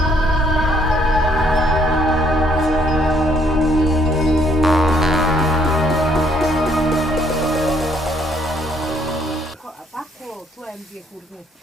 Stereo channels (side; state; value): both; normal; correlation 0.66